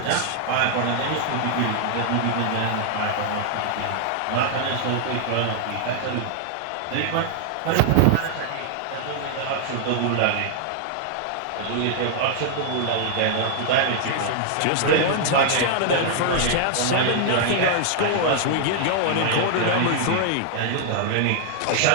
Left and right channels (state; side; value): different; both; correlation -0.01